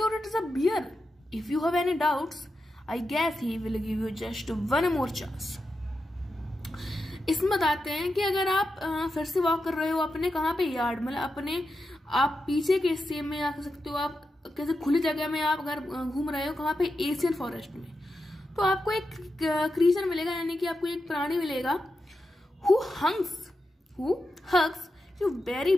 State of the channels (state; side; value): normal; both; correlation 0.88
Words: it is a bear, if you have any doubts I guess he will give you just 1 more चांस। इसमें बताते हैं कि अगर आप फिर से वॉक कर रहे हो अपने कहाँ पे, यार्ड, मतलब अपने आप पीछे के हिस्से में आ सकते हो, आप कैसे खुली जगह में आप अगर घूम रहे हो कहाँ पे, एशियन फॉरेस्ट में, तो आपको एक क्रीचर मिलेगा, यानी कि आपको एक प्राणी मिलेगा who hugs you very